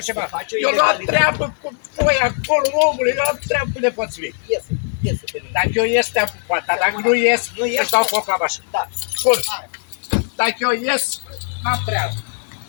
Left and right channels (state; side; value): silent; right; digital silence